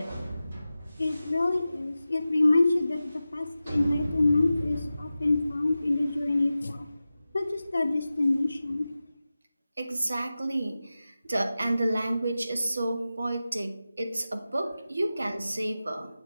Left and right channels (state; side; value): inverted; both; correlation -0.95